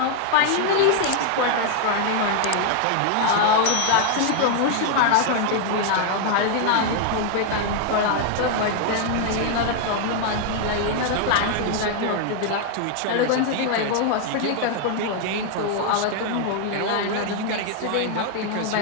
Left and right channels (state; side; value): different; both; correlation 0.00